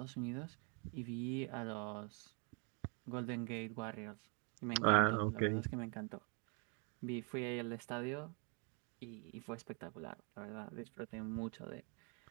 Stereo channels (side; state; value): left; quieter; 36.1 dB